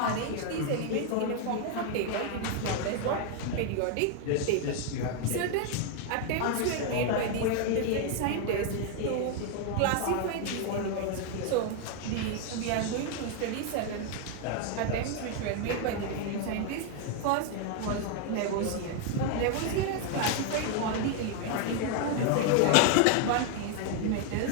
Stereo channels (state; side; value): different; both; correlation 0.01